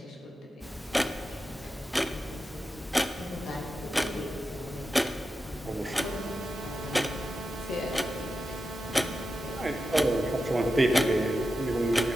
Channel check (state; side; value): normal; both; correlation 0.90